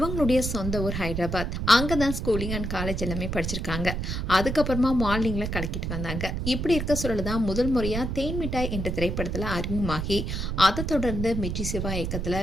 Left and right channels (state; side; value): noise; right; rumble, 3 dB below the sound